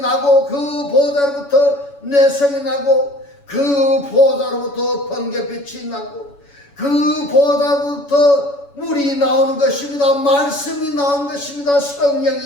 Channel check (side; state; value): right; late; 7.1 ms